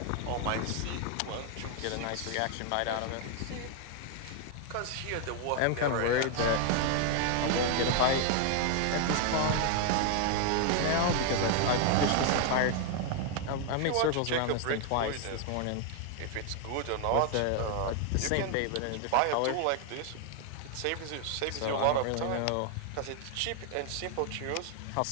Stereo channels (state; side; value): different; both; correlation 0.00